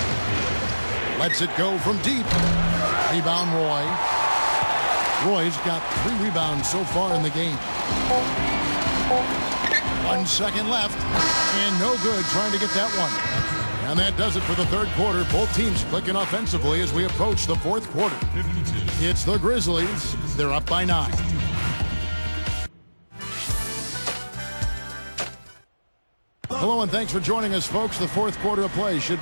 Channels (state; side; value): inverted; both; correlation -1.00